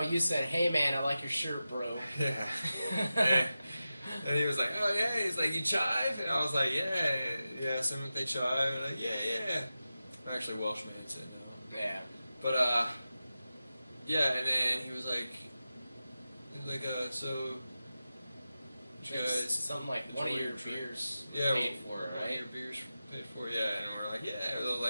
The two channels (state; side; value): inverted; both; correlation -0.93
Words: said, hey man, I like your shirt, bro. Yeah. And he was like, oh yeah. He's like, you chive? And I was like, yeah. Some they chive. And I'm like, yeah. Actually, Welshman said no. Yeah. But yeah. And then he was like, so, you guys, something like one of your beers paid for, right? One of your beers paid for, yeah. And we're like, yeah. They were